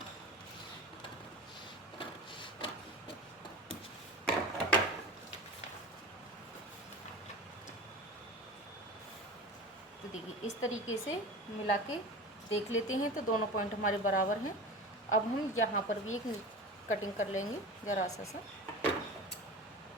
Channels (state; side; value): normal; both; correlation 0.32